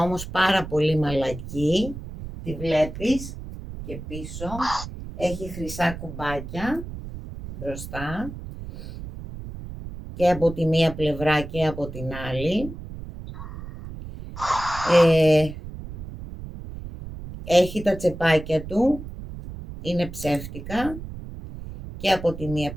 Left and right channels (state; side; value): noise; right; rumble, 11 dB below the sound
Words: όμως πάρα πολύ μαλακή. Τη βλέπεις και πίσω. Έχει χρυσά κουμπάκια μπροστά και από τη μία πλευρά και από την άλλη. Έχει τα τσεπάκια του, είναι ψεύτικα και από τη μία